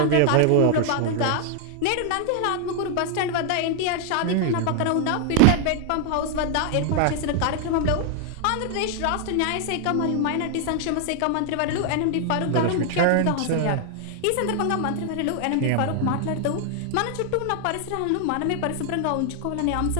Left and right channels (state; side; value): different; both; correlation 0.00